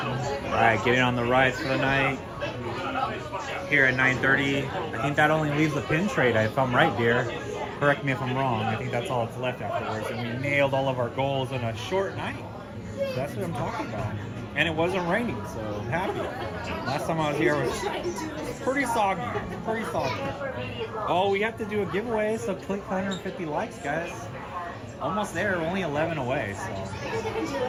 Alright, getting on the rides for the night. Here at 9:30. I think that only leaves the pin trade, if I'm right, dear. Correct me if I'm wrong. I think that's all that's left afterwards. And we nailed all of our goals in a short night. That's what I'm talking about. And it wasn't raining, so I'm happy. Last time I was here was pretty soggy. Pretty soggy. Oh, we have to do a giveaway, so click 150 likes, guys. Almost there, only 11 away, so.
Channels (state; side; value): identical; both; correlation 1.00